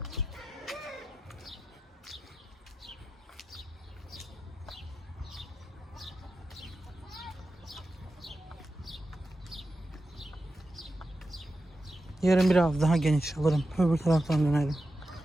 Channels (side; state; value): both; normal; correlation 0.90